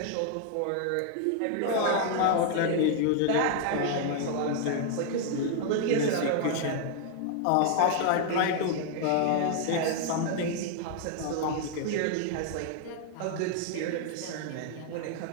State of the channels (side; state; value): both; different; correlation 0.00